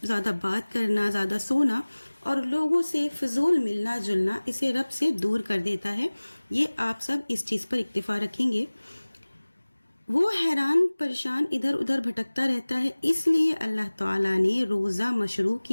زیادہ بات کرنا، زیادہ سونا اور لوگوں سے فضول ملنا جلنا اسے رب سے دور کر دیتا ہے۔ یہ آپ سب اس چیز پر اکتفا رکھیں گے۔ وہ حیران پریشان ادھر ادھر بھٹکتا رہتا ہے، اس لیے اللہ تعالیٰ نے روزہ مشروع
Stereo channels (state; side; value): inverted; both; correlation -1.00